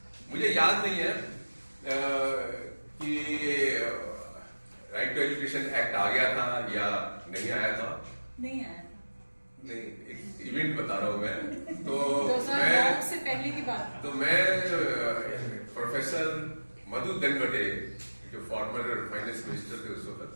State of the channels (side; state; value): both; inverted; correlation -1.00